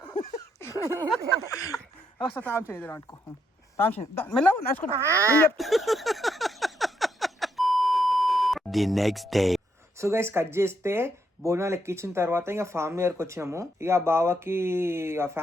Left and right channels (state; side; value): normal; both; correlation 0.76